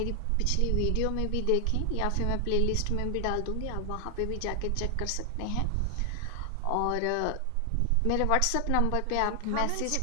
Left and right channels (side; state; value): both; different; correlation 0.00